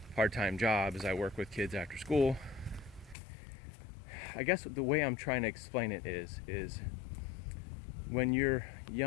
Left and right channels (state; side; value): drops out; right; at 3.2 s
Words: part-time job is I work with kids after school. I guess the way I'm trying to explain it is when you're